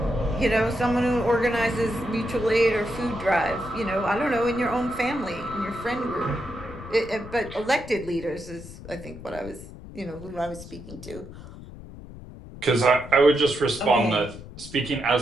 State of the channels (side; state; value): left; noise; rumble, 14 dB below the sound